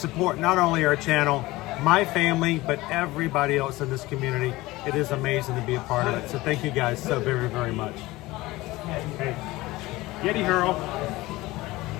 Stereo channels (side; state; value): right; quieter; 19.4 dB